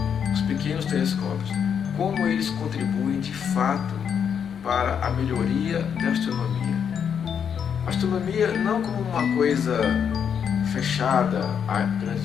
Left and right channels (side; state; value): right; quieter; 7.6 dB